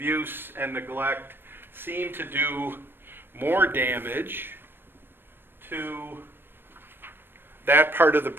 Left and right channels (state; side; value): late; left; 0.10 ms